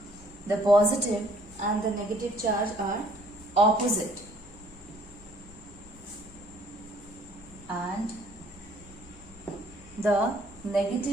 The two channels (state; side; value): noise; left; rumble, 22 dB below the sound